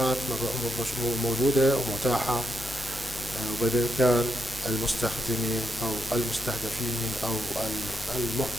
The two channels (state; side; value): normal; both; correlation 0.82